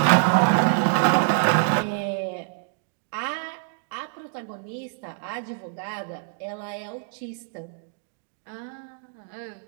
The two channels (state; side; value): silent; left; digital silence